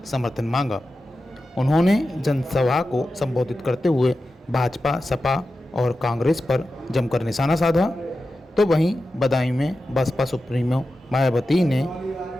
समर्थन मांगा। उन्होंने जनसभा को संबोधित करते हुए भाजपा, सपा और कांग्रेस पर जमकर निशाना साधा। तो वहीं बदायूं में बसपा सुप्रीमो मायावती ने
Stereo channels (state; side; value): normal; both; correlation 0.92